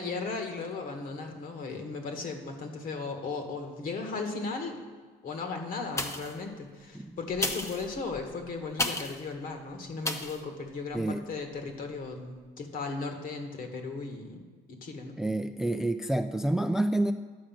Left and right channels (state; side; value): normal; both; correlation 0.58